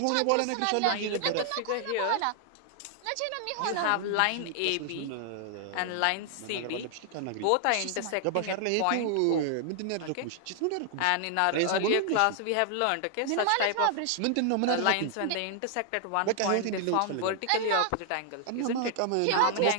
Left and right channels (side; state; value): both; different; correlation 0.00